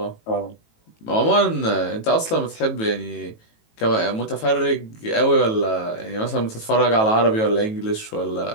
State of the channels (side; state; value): right; late; 18 ms